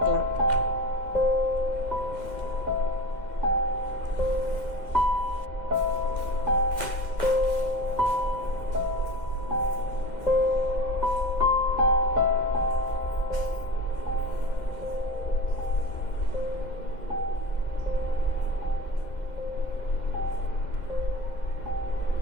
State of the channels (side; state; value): right; late; 2.1 ms